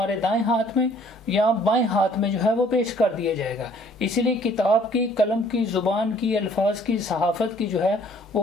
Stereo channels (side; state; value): both; normal; correlation 0.58